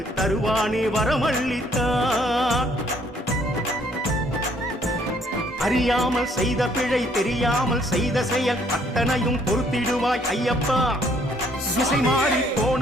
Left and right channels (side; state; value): both; normal; correlation 0.65